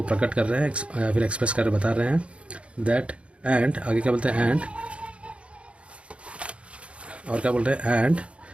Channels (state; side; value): late; left; 0.060 ms